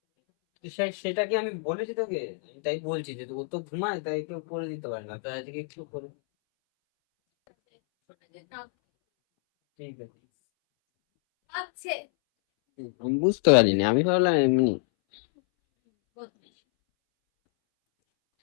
সেটা কি আমি বলেছি তোকে? আমি তাই বলছি যে ও তো ঘুমায়, তাই কেউ করে দিতে পারে না, তাই আজকে একটু করে। ঠিক আছে। আমি বুঝতে পারিনি, আমি ভাবলাম এমনি।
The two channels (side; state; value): right; silent; 60 dB below the other